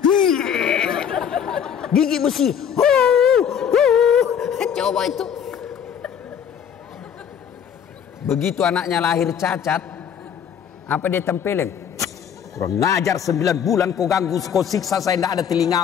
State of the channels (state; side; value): quieter; right; 8.2 dB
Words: Gigi besi. Coba itu. Begitu anaknya lahir cacat, apa dia tempelin? Kurang ngajar 9 bulan kau ganggu, kau siksa saya, tidak ada